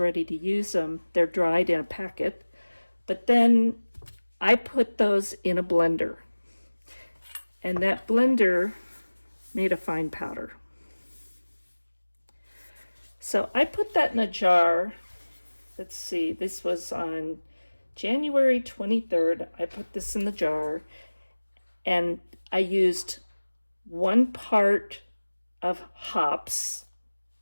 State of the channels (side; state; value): both; inverted; correlation -1.00